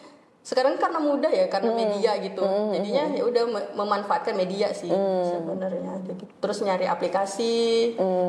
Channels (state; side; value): identical; both; correlation 1.00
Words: Sekarang karena mudah ya, karena media gitu, jadinya ya udah memanfaatkan media sih sebenarnya. Terus nyari aplikasi